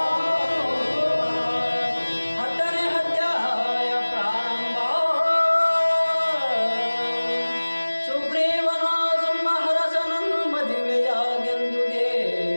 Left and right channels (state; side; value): inverted; both; correlation -1.00